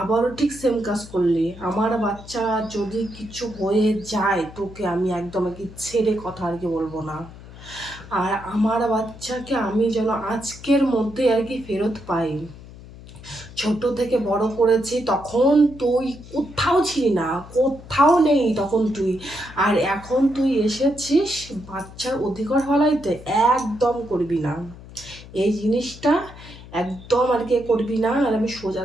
আবারও ঠিক সেম কাজ করলি। আমার বাচ্চা যদি কিছু হয়ে যায় তোকে আমি একদম আর কি ছেড়ে কথা আর কি বলবো না। আর আমার বাচ্চাকে আমি যেন আজকের মধ্যে আর কি ফেরত পাই। ছোট থেকে বড় করেছি, তখন তুই কোথাও ছিলি না, কোথাও নেই তখন তুই। আর এখন তুই এসেছিস বাচ্চার অধিকার ফলাইতে, একদম করবি না এই জিনিসটা। একদম আর কি করবি না, আর আমি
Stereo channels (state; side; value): noise; left; hum, 17 dB below the sound